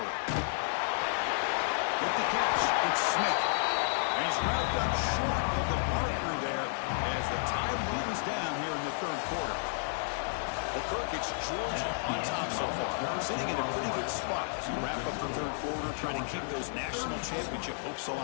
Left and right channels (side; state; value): right; silent; digital silence